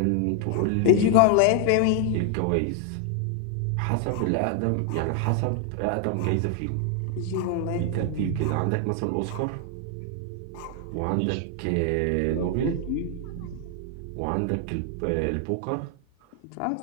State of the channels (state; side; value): different; both; correlation 0.00